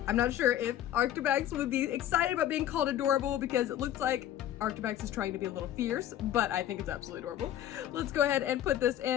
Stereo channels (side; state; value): right; quieter; 11.9 dB